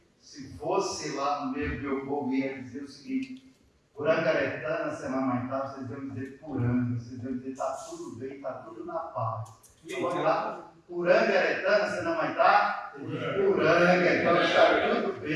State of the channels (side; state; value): both; identical; correlation 1.00